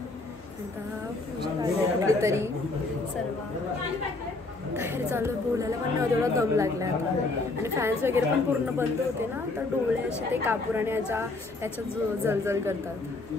कुठेतरी सर्व बाहेर चालू बोलायला पण नाही तेवढा दम लागला आता. आणि फॅन्स वगैरे पण पूर्ण बंद होते ना, तर डोळे असे ते कापूर आणि याच्यात जलजल करतात.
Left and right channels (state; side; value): quieter; right; 3.3 dB